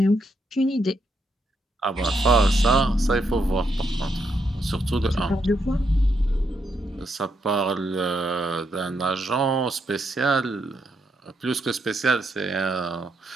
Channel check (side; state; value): both; normal; correlation 0.79